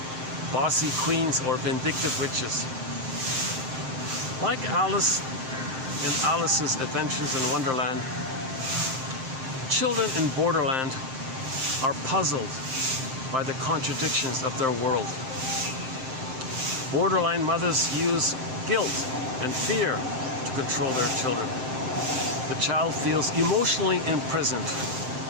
bossy queens, or vindictive witches. Like Alice in Alice's Adventures in Wonderland, children in Borderland are puzzled by the contradictions of their world. Borderline mothers use guilt and fear to control their children. The child feels emotionally imprisoned,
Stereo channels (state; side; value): late; left; 7.7 ms